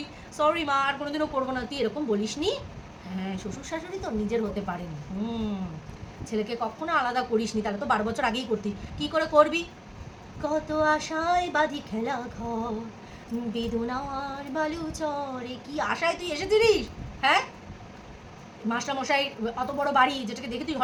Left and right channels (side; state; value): both; identical; correlation 1.00